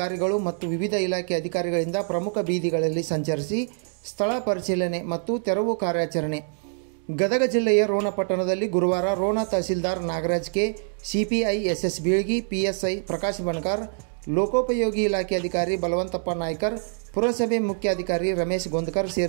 ಮತ್ತು ವಿವಿಧ ಇಲಾಖೆ ಅಧಿಕಾರಿಗಳಿಂದ ಪ್ರಮುಖ ಬೀದಿಗಳಲ್ಲಿ ಸಂಚರಿಸಿ ಸ್ಥಳ ಪರಿಶೀಲನೆ ಮತ್ತು ತೆರವು ಕಾರ್ಯಾಚರಣೆ. ಗದಗ ಜಿಲ್ಲೆಯ ರೋಣ ಪಟ್ಟಣದಲ್ಲಿ ಗುರುವಾರ ರೋಣ ತಹಸೀಲ್ದಾರ್ Nagaraj K, CPI S Bilgi, PSI Prakash Banakar, ಲೋಕೋಪಯೋಗಿ ಇಲಾಖೆ ಅಧಿಕಾರಿ ಬಲವಂತಪ್ಪ ನಾಯ್ಕರ್, ಪುರಸಭೆ ಮುಖ್ಯಾಧಿಕಾರಿ ರಮೇಶ್ ಗೊಂದಕರ್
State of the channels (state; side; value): silent; left; 56 dB below the other